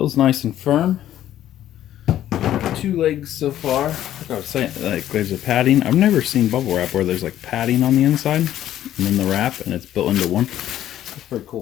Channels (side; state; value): right; quieter; 12.2 dB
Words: nice and firm. 2 legs so far. Like I was saying, like there's a padding. I've never seen bubble wrap where there's like padding on the inside and then the wrap and it's built into one. That's pretty